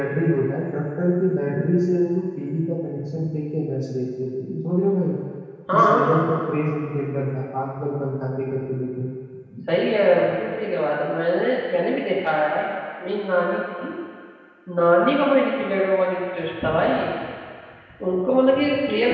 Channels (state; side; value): identical; both; correlation 1.00